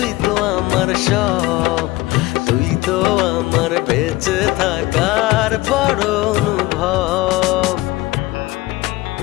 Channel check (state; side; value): quieter; right; 19.0 dB